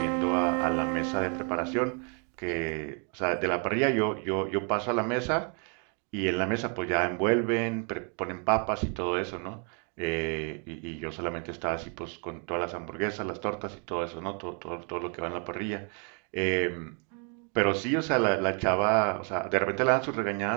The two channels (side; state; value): left; quieter; 38.8 dB